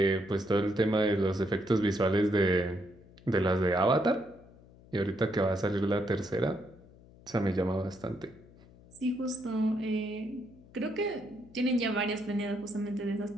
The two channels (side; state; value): left; noise; hum, 24 dB below the sound